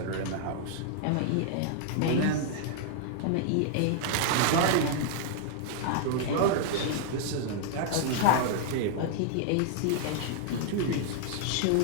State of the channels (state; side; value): different; both; correlation -0.01